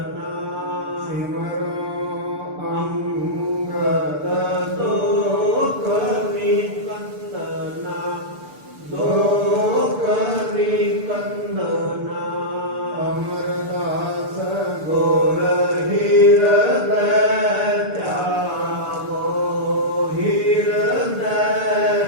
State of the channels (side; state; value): left; late; 6.8 ms